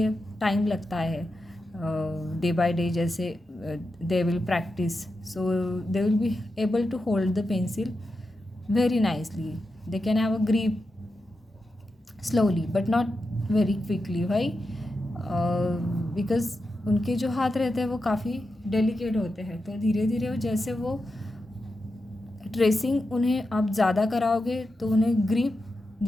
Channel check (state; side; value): normal; both; correlation 0.89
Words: टाइम लगता है, डे बाय डे, जैसे they will practice, so they will be able to hold the pencil very nicely. They can have a grip slowly but not very quickly. Why? Because उनके जो हाथ रहते हैं वो काफ़ी डेलिकेट होते हैं, तो धीरे धीरे जैसे वो ट्रेसिंग उन्हें आप ज़्यादा कराओगे तो उन्हें ग्रिप